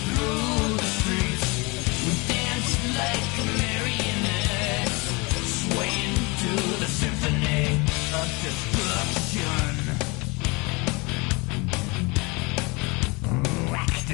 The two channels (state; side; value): quieter; right; 27.3 dB